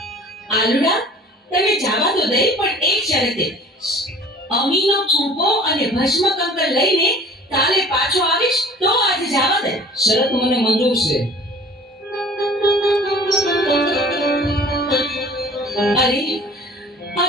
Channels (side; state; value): both; normal; correlation 0.48